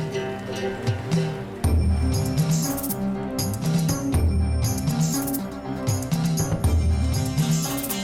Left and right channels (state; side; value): identical; both; correlation 1.00